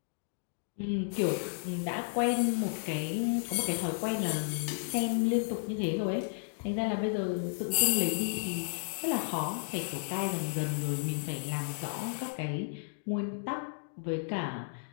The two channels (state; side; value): silent; right; digital silence